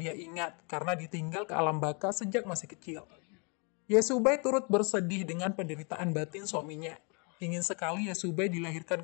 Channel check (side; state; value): right; quieter; 34.7 dB